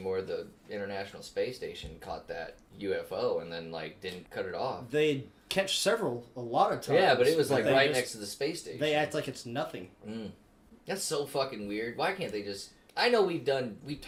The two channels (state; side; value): identical; both; correlation 1.00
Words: the International Space Station caught that UFO and then didn't cut it off. They catch a lot of times. Yeah, but it was they right just- next to the space station. They act like it's nothing. That's so fucking weird. Why can't they just? I know we've